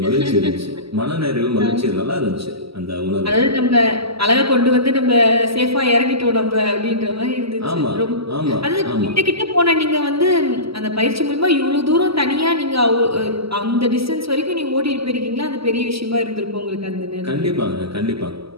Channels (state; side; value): late; left; 0.76 ms